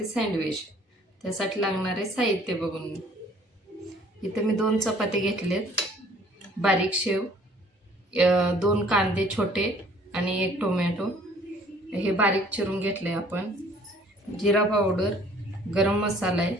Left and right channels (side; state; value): both; normal; correlation 0.56